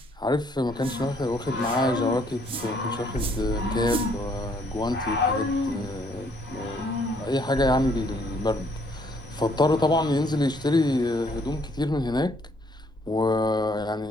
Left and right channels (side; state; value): both; normal; correlation 0.66